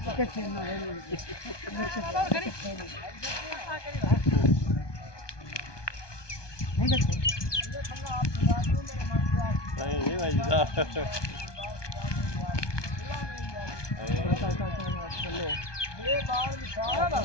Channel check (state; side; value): late; right; 1.2 ms